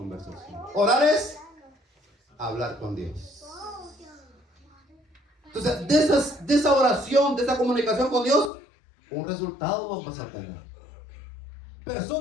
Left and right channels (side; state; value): right; drops out; at 8.5 s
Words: Orar es hablar con Dios. Entonces, de esa oración, de esa comunicación con Dios, un resultado vamos a tener.